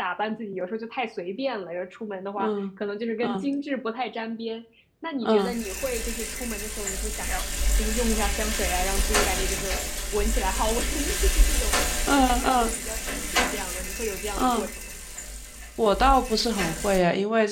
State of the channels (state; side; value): identical; both; correlation 1.00